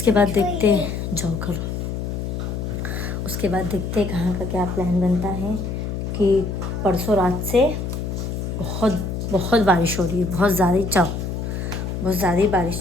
बाद देखते जाओ करो, उसके बाद देखते कहाँ का क्या प्लान बनता है। कि परसों रात से बहुत बारिश हो रही है, बहुत ज़्यादा ही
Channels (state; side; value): noise; left; hum, 4 dB below the sound